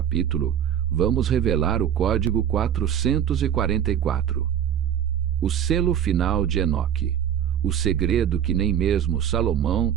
vamos revelar o código 444, o selo final de Enoque, o segredo que nem mesmo Salomão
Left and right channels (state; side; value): quieter; left; 9.6 dB